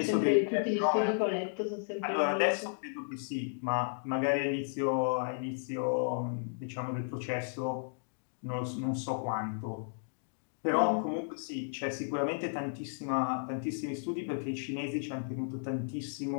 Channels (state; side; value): silent; right; digital silence